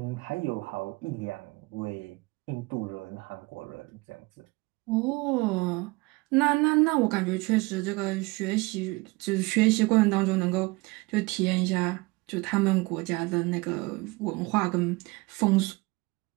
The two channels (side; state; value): left; quieter; 24.1 dB